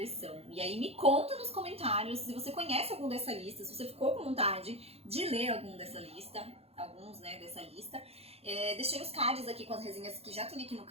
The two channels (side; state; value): left; late; 0.29 ms